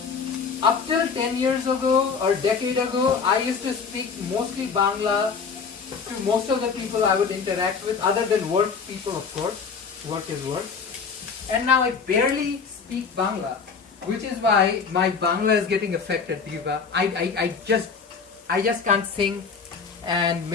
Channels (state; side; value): quieter; right; 5.5 dB